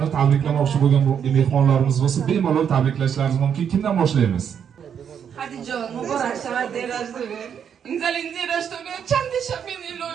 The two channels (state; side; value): quieter; left; 8.0 dB